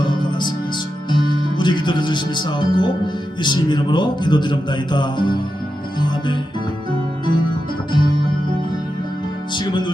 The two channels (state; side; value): normal; both; correlation 0.89